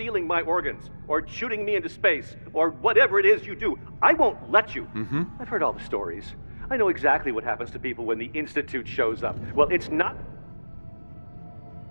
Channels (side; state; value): both; inverted; correlation -1.00